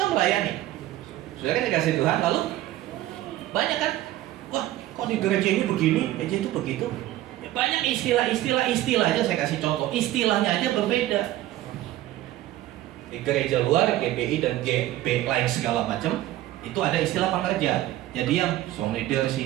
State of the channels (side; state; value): left; quieter; 14.8 dB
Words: melayani. Sudah kan dikasih Tuhan, lalu banyak kan? Wah, kok di gereja ini begini, gereja itu begitu. Ya, banyak istilah aja saya kasih contoh. Istilahnya aja berbeda. Di gereja luar, GBI dan GB lain segala macam, itu ada istilah pengerja. Jadi yang song leader,